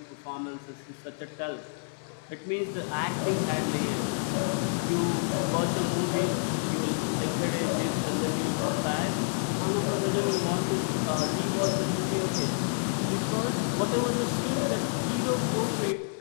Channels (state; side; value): silent; right; 59 dB below the other